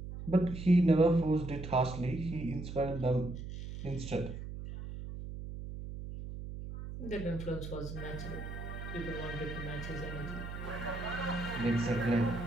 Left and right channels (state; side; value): noise; right; hum, 8 dB below the sound